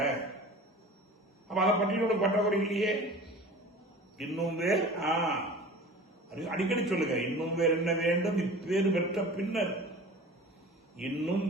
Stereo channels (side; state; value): both; normal; correlation 0.40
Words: அப்ப அதை பற்றி பற்றாக்குறை இல்லையே. இன்னும் வேறு அடிக்கடி சொல்லுங்க. இன்னும் வேறு என்ன வேண்டும் இப்பேறு பெற்ற பின்னர். இன்னும்